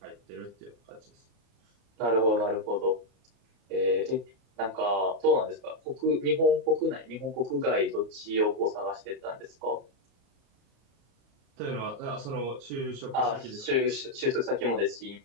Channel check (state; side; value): late; left; 34 ms